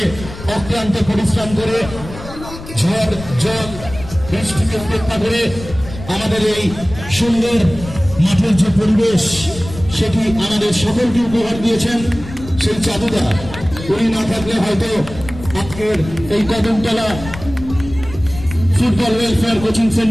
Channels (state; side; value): noise; left; rumble, 13 dB below the sound